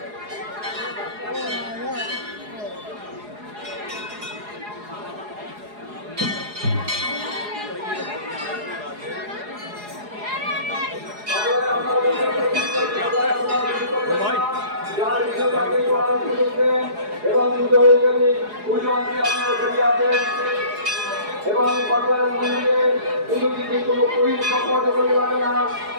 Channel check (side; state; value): left; late; 4.8 ms